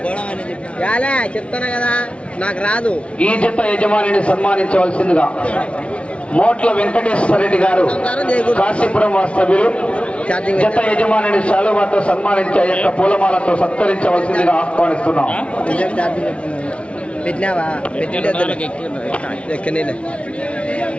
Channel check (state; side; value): late; right; 0.061 ms